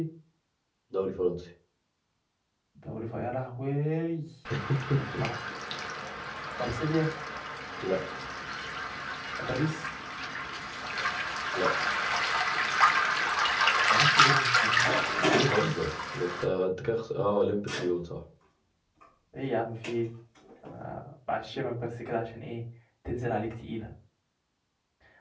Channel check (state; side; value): identical; both; correlation 1.00